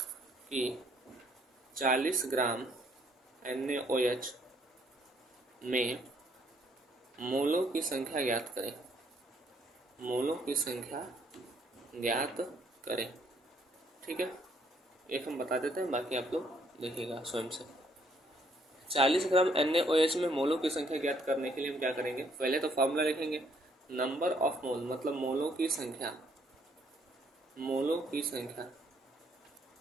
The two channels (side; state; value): both; normal; correlation 0.68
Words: कि 40 ग्राम NaOH में मोलों की संख्या ज्ञात करें, मोलों की संख्या ज्ञात करें, ठीक है। एक हम बता देते हैं, बाकी आप लोग देखिएगा स्वयं से। 40 ग्राम NaOH में मोलों की संख्या ज्ञात करने के लिए हम क्या करेंगे, पहले तो फॉर्मूला लिखेंगे, नंबर ऑफ मोल मतलब मोलों की संख्या, मोलों की संख्या